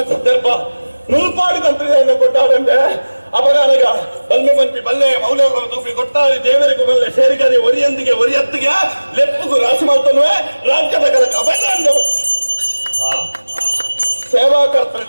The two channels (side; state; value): both; inverted; correlation -1.00